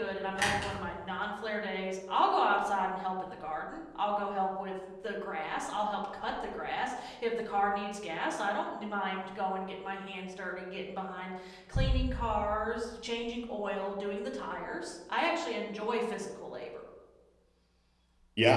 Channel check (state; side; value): identical; both; correlation 1.00